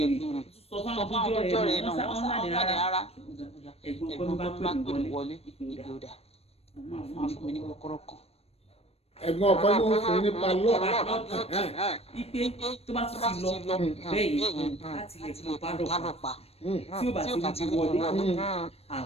ẹ̀gbìn sọ fún àwọn àtijọ́ rẹ̀ náà wọ́n sáà ní rárá ẹ̀gbọ́n bá pè mí wọlé ìgbòdà wọ́n á fún mi ní kọ́kọ́rọ́ kan. ẹ̀gbọ́n ọkọ ló ń fún ní palọ. ipe tó bá tún ti lọ bẹ́ẹ̀ yẹn láti lè pálọ̀ pa tí ó bá ti wọlé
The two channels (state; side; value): late; right; 0.29 ms